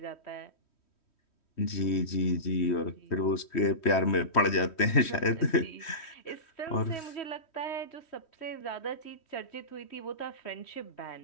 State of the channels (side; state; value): right; late; 3.1 ms